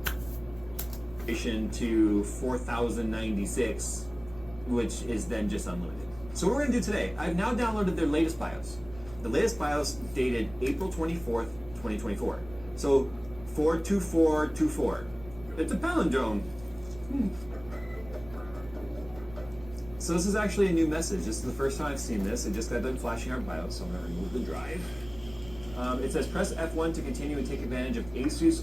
to 4096, which is then just unlimited. So what we're going to do today, I've now downloaded their latest BIOS. The latest BIOS dated April 24th, 2024. So 42424. It's a palindrome. So this is actually a new message. This is the first time I've seen this. It just got done flashing our BIOS, so I'm going to remove the drive. It says press F1 to continue and take advantage of ASUS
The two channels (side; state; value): right; noise; rumble, 18 dB below the sound